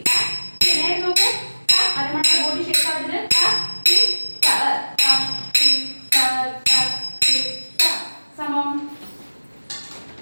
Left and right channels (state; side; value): inverted; both; correlation -1.00